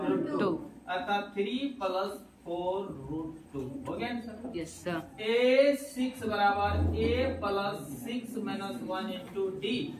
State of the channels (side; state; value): both; identical; correlation 1.00